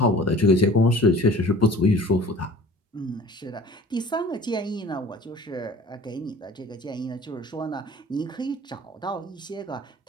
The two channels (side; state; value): both; normal; correlation 0.44